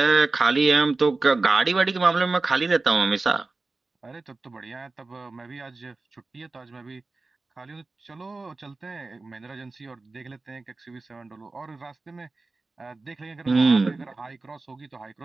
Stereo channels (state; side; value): quieter; left; 3.5 dB